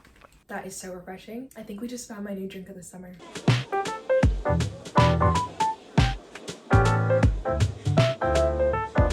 That is so refreshing. I think we just found my new drink of the summer.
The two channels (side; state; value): both; identical; correlation 1.00